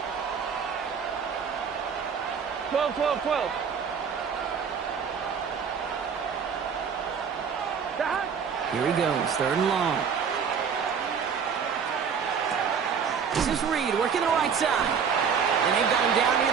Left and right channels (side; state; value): left; quieter; 6.7 dB